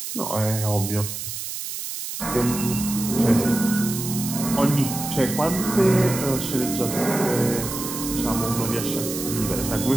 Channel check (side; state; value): right; noise; hiss, 6 dB below the sound